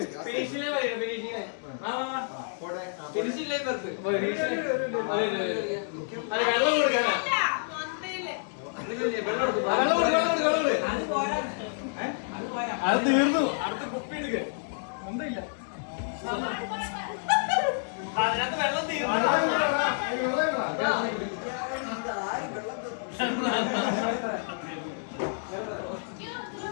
അത് തീർന്നു. അടുത്ത കുപ്പി എടുക്ക ഒന്നുമില്ല അതിനകത്ത് വെള്ളം തീർന്നു.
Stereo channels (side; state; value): right; silent; digital silence